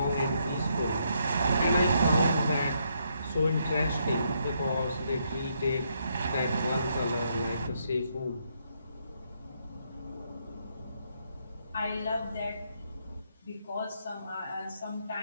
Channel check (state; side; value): inverted; both; correlation -0.75